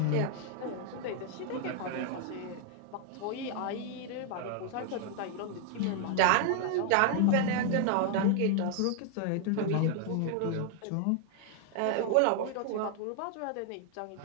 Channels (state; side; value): different; both; correlation 0.00